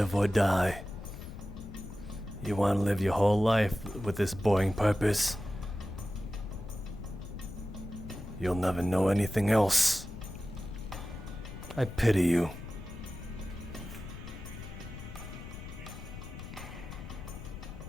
or die. You want to live your whole life with this boring purpose. You'll never know anything else. I pity you.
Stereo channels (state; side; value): noise; left; rumble, 11 dB below the sound